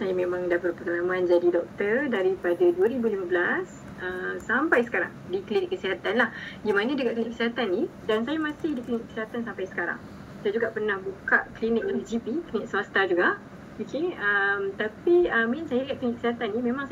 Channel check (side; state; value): both; identical; correlation 1.00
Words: memang dah berpengalaman jadi doktor daripada 2015 sampai sekarang di klinik kesihatan lah. Di mana dekat klinik kesihatan ni, dan saya masih di klinik kesihatan sampai sekarang. Saya juga pernah buka klinik GP, klinik swasta juga. Okay, tapi main saya dekat klinik kesihatan ni memang